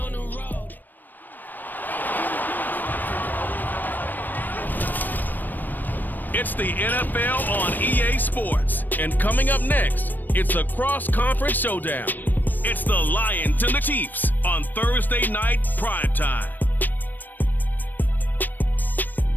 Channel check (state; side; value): late; right; 0.090 ms